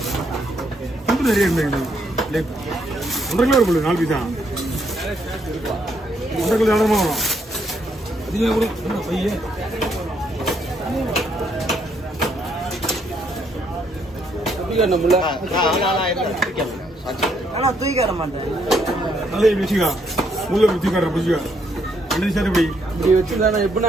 ரொம்ப நிறைய இருந்தது. 1.5 கிலோ இருக்கும் 4 பீஸ் தான், 1.5 கிலோ இடமா வரும். அதிகமாக கூட பையன் தூக்கிட மாட்டேன். நல்லா வச்சுக்கா, முள்ள வச்சு காட்டுற வச்சுக்கா. 2 சார் இப்படி இப்படி வச்சுருந்தா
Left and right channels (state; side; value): normal; both; correlation 0.72